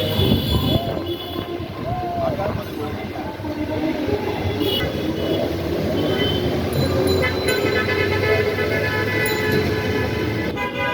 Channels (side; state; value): both; identical; correlation 1.00